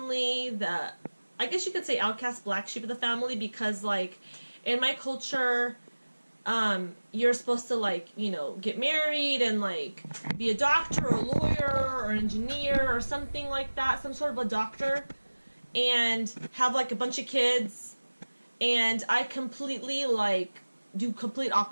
I guess you could say outcast black sheep of the family, because like in my culture, you're supposed to like, you know, get married and like be a doctor or a lawyer or an engineer or something like that, some sort of a doctor, and have like a bunch of kids. And I completely like do complete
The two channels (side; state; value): both; inverted; correlation -1.00